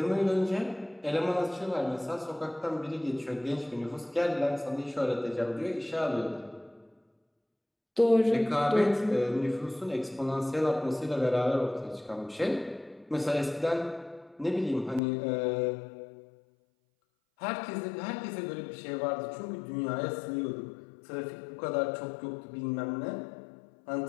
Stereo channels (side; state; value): right; drops out; at 15.0 s